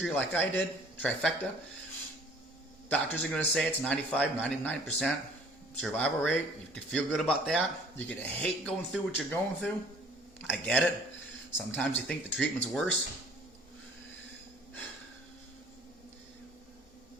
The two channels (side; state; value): both; normal; correlation 0.53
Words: like I did, trifecta. Doctors are going to say it's 95, 99% survival rate. You can feel good about that. You're going to hate going through what you're going through. I get it. Sometimes you think the treatment's worse.